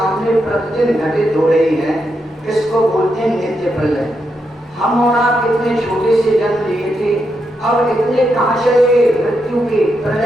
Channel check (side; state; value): both; normal; correlation 0.83